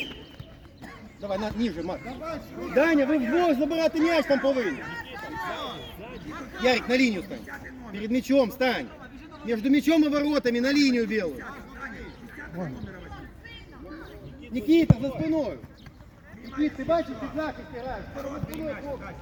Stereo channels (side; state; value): both; identical; correlation 1.00